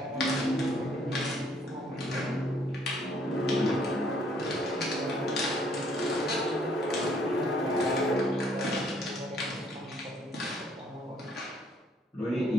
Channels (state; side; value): normal; both; correlation 0.64